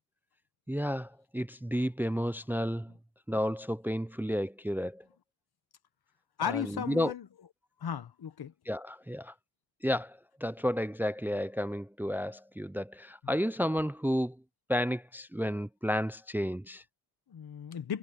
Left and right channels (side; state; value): both; normal; correlation 0.86